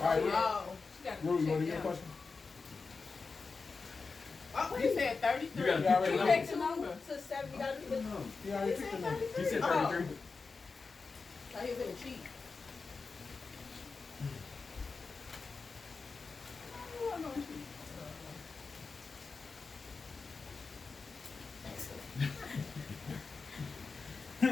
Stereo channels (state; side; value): quieter; right; 4.5 dB